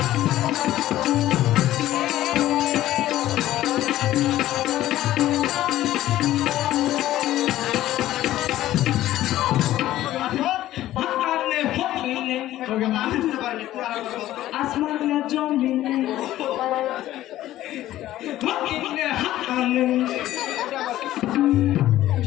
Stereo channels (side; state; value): right; quieter; 14.2 dB